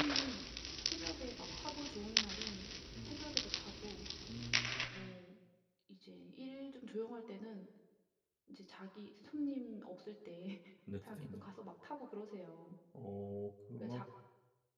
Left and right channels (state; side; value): identical; both; correlation 1.00